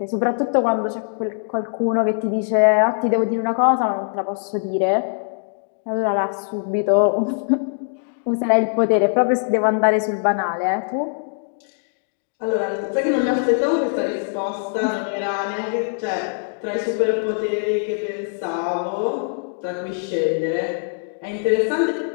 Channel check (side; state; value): right; silent; digital silence